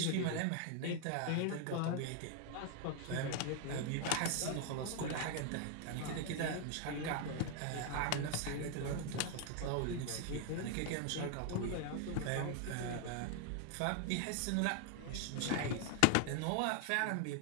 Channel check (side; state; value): both; different; correlation 0.00